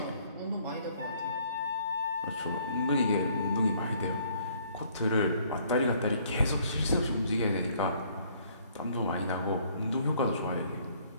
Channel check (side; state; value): both; inverted; correlation -0.62